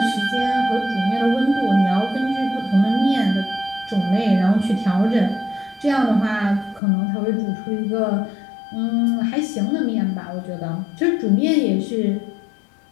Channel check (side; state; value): right; drops out; at 6.8 s